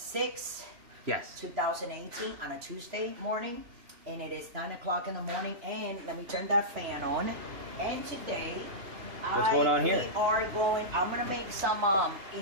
yes, 2018 on a Tuesday morning. And it is 9 o'clock in the morning, and let me turn that fan on. And today, what's going on here? I'm gonna make some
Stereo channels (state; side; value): late; left; 3.0 ms